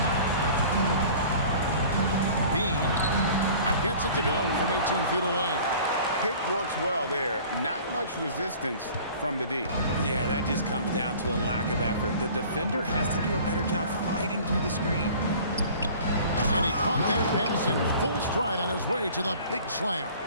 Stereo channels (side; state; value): both; inverted; correlation -0.46